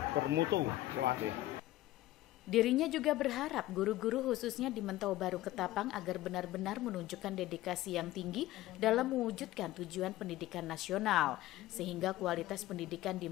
bermutu. Terima kasih. Dirinya juga berharap guru-guru khususnya di Mentawa Baru Ketapang agar benar-benar menunjukkan dedikasi yang tinggi dalam mewujudkan tujuan pendidikan nasional, sehingga kualitas pendidikan di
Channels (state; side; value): quieter; right; 16.0 dB